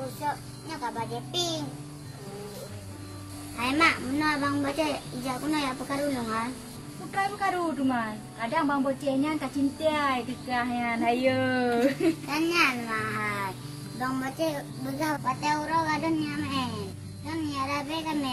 nya kau baca pink. Hai mak, mana abang baca hijau kuna ya pekarulung kan? Bukan tu man. Kadang bang bocehnya kak cintai tikahnya. Hayo. Tanya mahal. Bang baca begah patah urang ada nyamen. Dan nyarabe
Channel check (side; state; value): both; identical; correlation 1.00